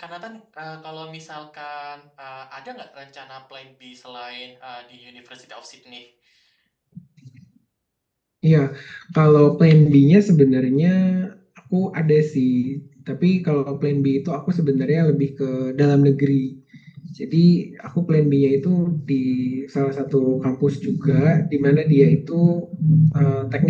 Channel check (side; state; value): both; identical; correlation 1.00